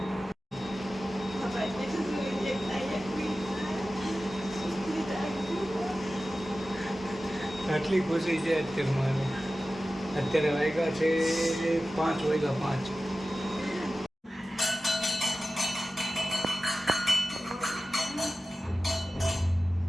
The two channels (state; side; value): normal; both; correlation 0.95